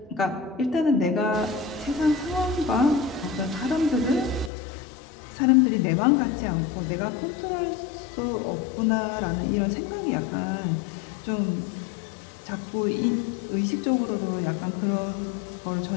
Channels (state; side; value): drops out; right; at 4.5 s